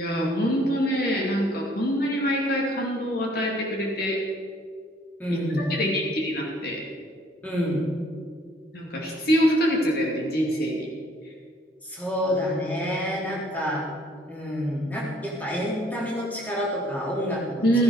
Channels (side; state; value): both; normal; correlation 0.61